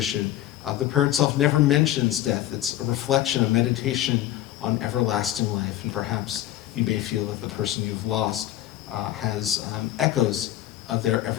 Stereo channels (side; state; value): right; quieter; 13.6 dB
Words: the prayer itself never mentions death. It's a reflection, a meditation on everlasting life. And perhaps you may feel that the person you've lost has echoes of their